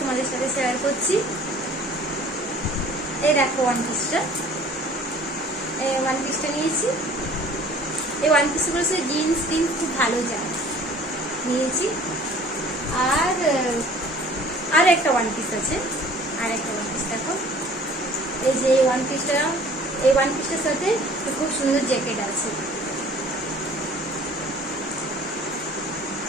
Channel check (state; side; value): normal; both; correlation 0.50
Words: তোমাদের সাথে শেয়ার করছি। এই দেখো ওয়ান পিসটা নিয়েছি। এই ওয়ান পিসগুলো সে জিন্স টিন্স খুব ভালো যায়, নিয়েছি। আর একটা ওয়ান পিস আছে, আর একটা ওয়ান পিস দেখো। এই যে এই ওয়ান পিসটার সাথে খুব সুন্দর জ্যাকেট আছে।